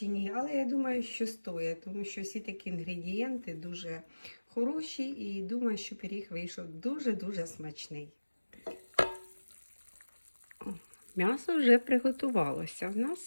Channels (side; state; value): both; inverted; correlation -1.00